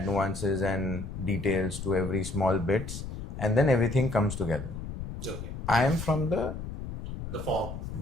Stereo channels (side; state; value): left; noise; rumble, 7 dB below the sound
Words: nuances and details to every small bits, and then everything comes together. Okay. I am from the